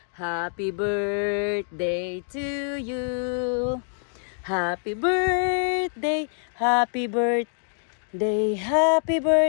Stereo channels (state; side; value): silent; right; digital silence